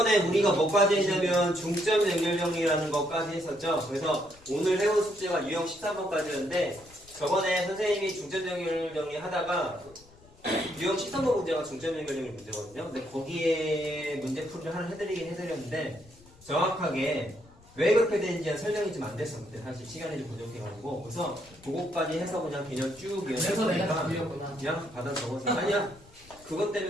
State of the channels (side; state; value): left; noise; rumble, 25 dB below the sound